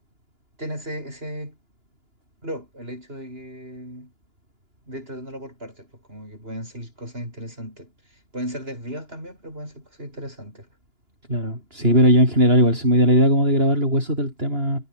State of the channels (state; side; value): late; left; 2.9 ms